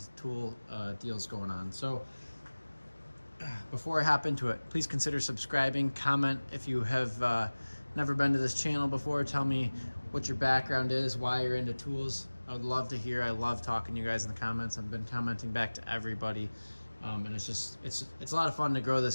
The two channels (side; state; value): both; inverted; correlation -1.00